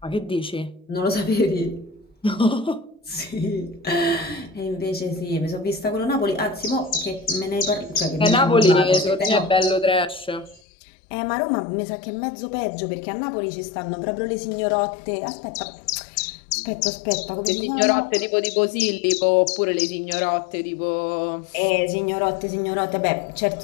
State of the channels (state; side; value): drops out; right; at 10.6 s